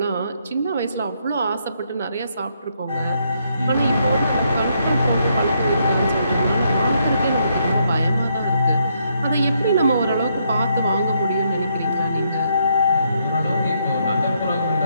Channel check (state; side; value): inverted; both; correlation -0.75